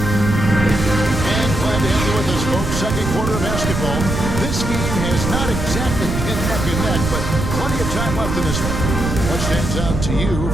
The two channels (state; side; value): noise; right; rumble, 3 dB below the sound